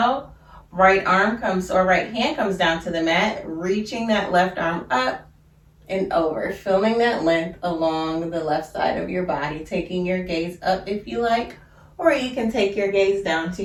right hand comes down to the mat, reaching that left arm up and over, feeling that length along the left side of your body, taking your gaze up if you like, or you can take your gaze down to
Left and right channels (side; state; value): both; identical; correlation 1.00